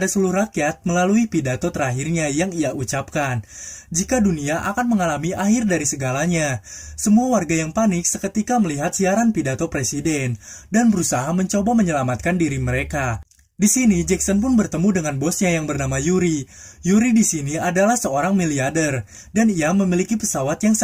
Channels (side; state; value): both; identical; correlation 1.00